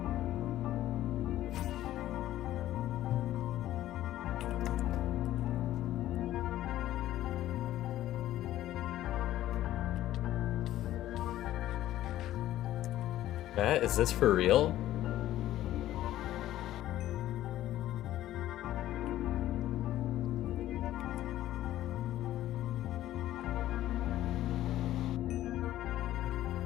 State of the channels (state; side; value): quieter; right; 13.8 dB